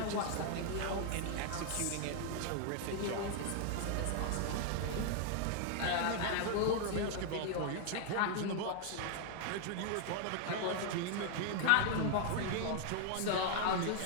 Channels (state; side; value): different; both; correlation 0.00